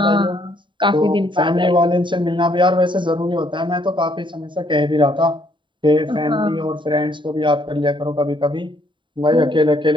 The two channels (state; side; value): late; left; 0.23 ms